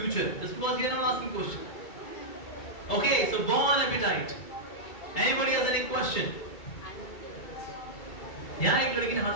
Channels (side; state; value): right; late; 2.3 ms